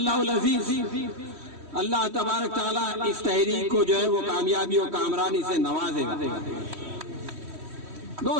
अज़ीज़ अल्लाह तबारक ताला इस तहरीक को जो है वो कामयाबी और कामरानी से नवाजेगा।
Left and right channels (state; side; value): late; left; 3.1 ms